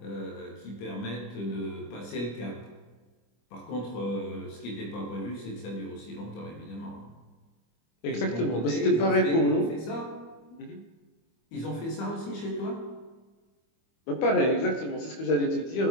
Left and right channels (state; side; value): late; right; 25 ms